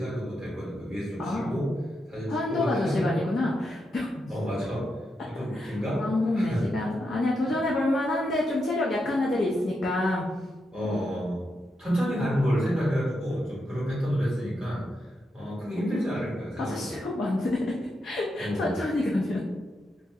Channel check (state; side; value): normal; both; correlation 0.84